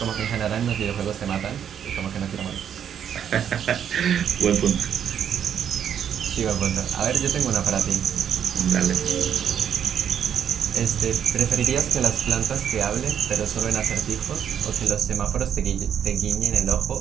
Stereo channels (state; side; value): quieter; left; 8.8 dB